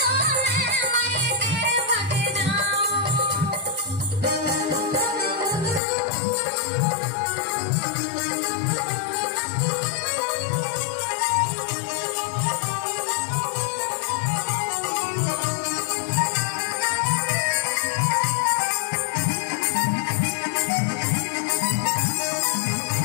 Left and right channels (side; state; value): right; drops out; at 5.8 s